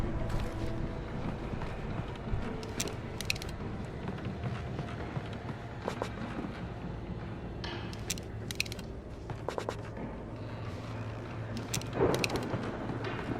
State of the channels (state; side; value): identical; both; correlation 1.00